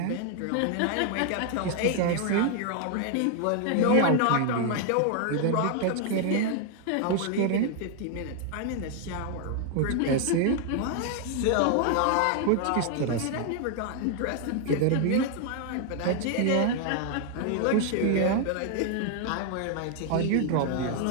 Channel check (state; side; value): different; both; correlation 0.00